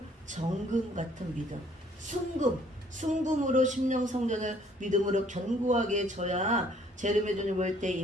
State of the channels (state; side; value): normal; both; correlation 0.61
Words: 정금 같은 믿음. 순금으로 심령 성전을 믿음으로 견고하게 져야 재림의 주님 올 때 이